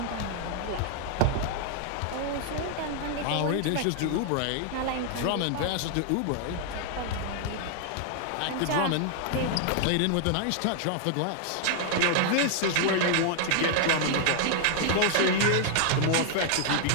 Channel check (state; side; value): different; both; correlation 0.00